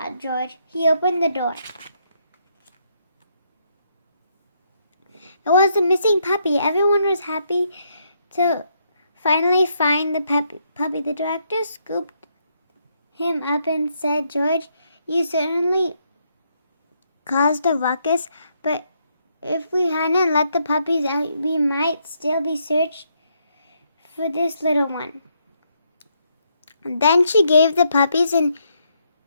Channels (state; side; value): inverted; both; correlation -0.75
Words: George. He opened the door. It was the missing puppy. Everyone was happy to finally find the puppy. The director scooped him up and said, "George, you certainly caused a ruckus, but if we hadn't let the puppies out, we might still be searched for this little one." Then she gave the puppies and